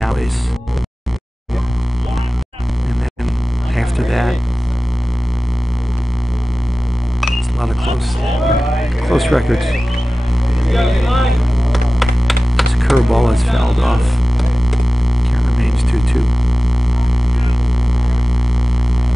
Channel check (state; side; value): normal; both; correlation 0.97